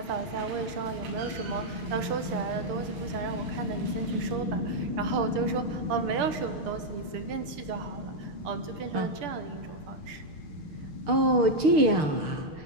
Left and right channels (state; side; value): late; left; 6.8 ms